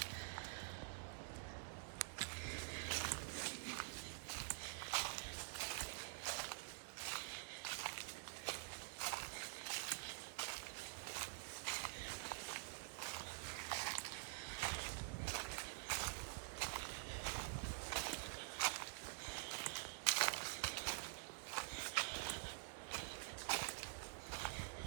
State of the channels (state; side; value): silent; left; digital silence